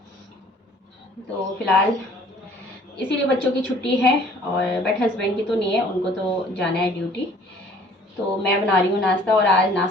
तो फिलहाल इसीलिए बच्चों की छुट्टी है, और बट हस्बैंड की तो नहीं है, उनको तो जाना है ड्यूटी। तो मैं बना रही हूँ नाश्ता, और आज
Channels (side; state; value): both; normal; correlation 0.54